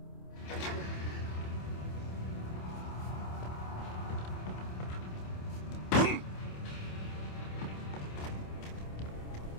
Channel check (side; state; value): right; late; 27 ms